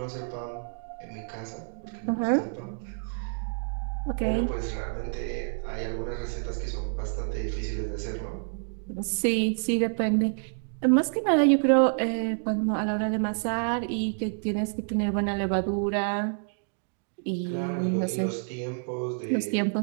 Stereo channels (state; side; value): silent; left; digital silence